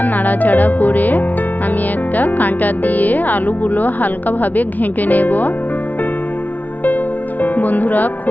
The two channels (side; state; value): right; late; 0.079 ms